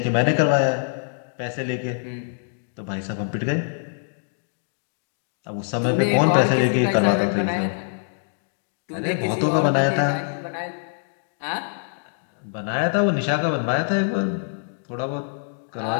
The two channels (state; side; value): silent; right; digital silence